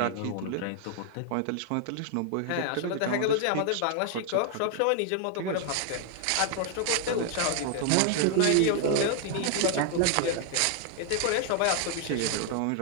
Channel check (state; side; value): different; both; correlation 0.00